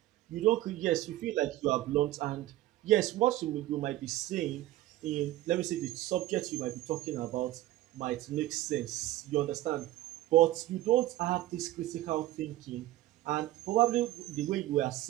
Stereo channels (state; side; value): quieter; left; 15.4 dB